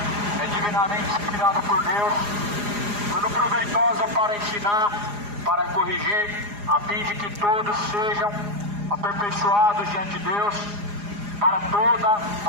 é divinamente inspirada por Deus, tudo proveitosa para ensinar, para corrigir, a fim de que todos sejam aperfeiçoados diante de Deus, para toda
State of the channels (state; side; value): late; left; 4.9 ms